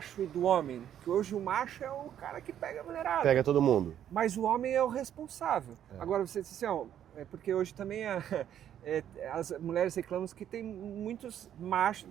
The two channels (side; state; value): left; quieter; 10.3 dB